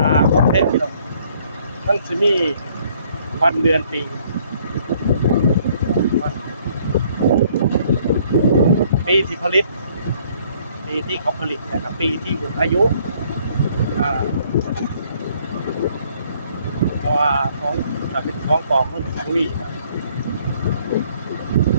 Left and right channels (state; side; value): inverted; both; correlation -0.63